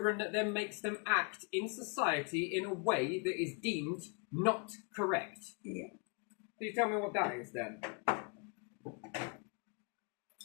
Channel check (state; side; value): quieter; right; 33.3 dB